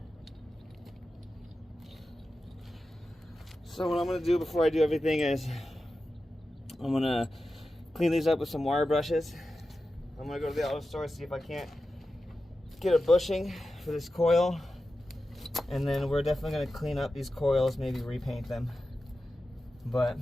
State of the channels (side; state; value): both; normal; correlation 0.92